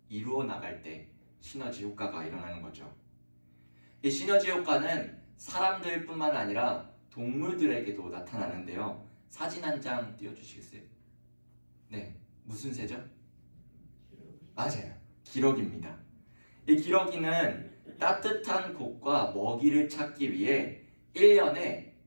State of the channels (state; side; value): inverted; both; correlation -1.00